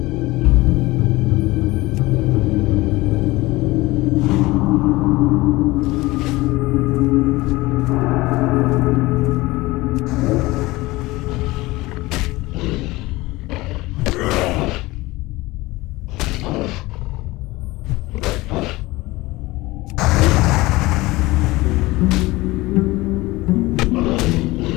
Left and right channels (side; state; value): right; quieter; 20.3 dB